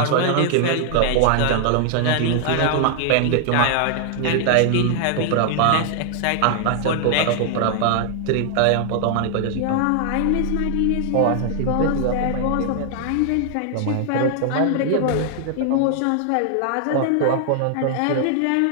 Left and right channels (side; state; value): both; different; correlation 0.00